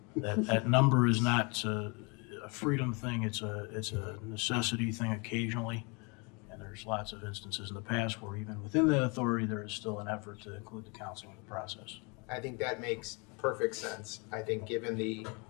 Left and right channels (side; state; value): right; quieter; 31.1 dB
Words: That number is not a freedom thing. It's a necessity thing occasionally, and there's lots of instances in the past where even within the authority there is still an effort to include the council in the process. I think that makes perfect sense. I think given the